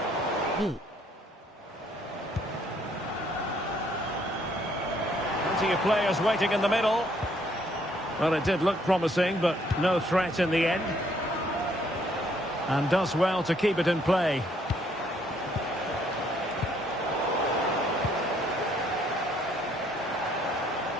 B. Plenty of players waiting in the middle. Well, it did look promising, but no threat in the end. And does well to keep it in play.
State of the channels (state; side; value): normal; both; correlation 0.67